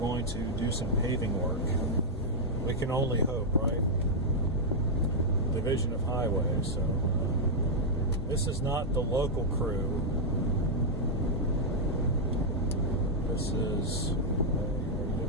to do some paving work. We can only hope, right? Division of Highways. So this is not the local crew. This is.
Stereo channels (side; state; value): both; normal; correlation -0.05